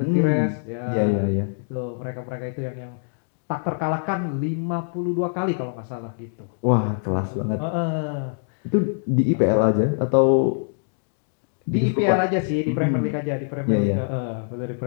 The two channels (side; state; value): right; silent; digital silence